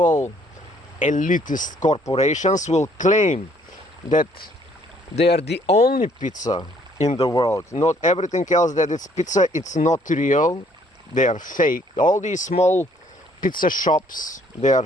elitist corporations will claim that they are the only pizza in the world. Not everything else that it's pizza, it's not real. They are fake. All these small pizza shops, they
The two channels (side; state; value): both; normal; correlation 0.63